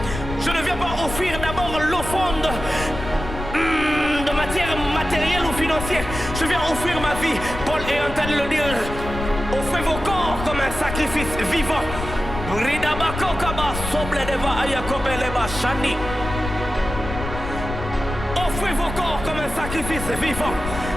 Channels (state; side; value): noise; left; rumble, 8 dB below the sound